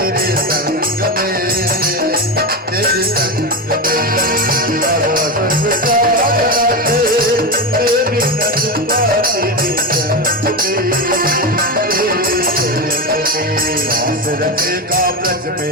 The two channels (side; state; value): both; normal; correlation 0.16